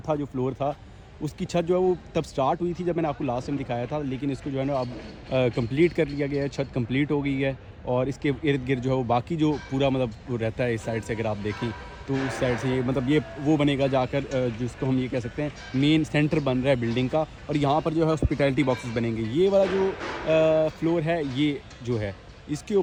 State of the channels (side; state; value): both; identical; correlation 1.00